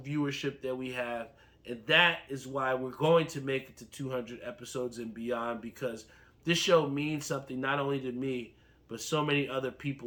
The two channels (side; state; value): both; identical; correlation 1.00